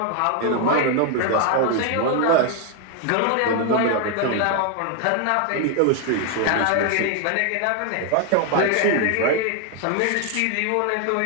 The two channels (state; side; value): different; both; correlation 0.01